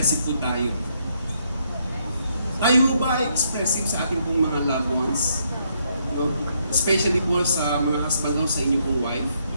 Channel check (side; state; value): both; inverted; correlation -0.74